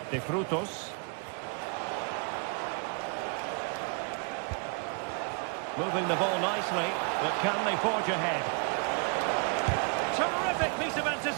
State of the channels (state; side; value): quieter; left; 36.6 dB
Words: De Frutos. Moving the ball nicely, but can they forge ahead? Terrific piece of